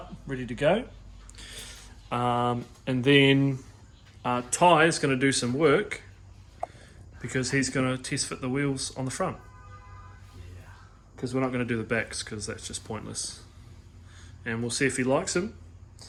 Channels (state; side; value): identical; both; correlation 1.00